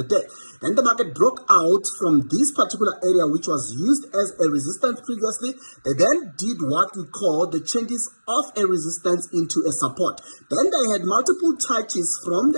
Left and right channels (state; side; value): inverted; both; correlation -1.00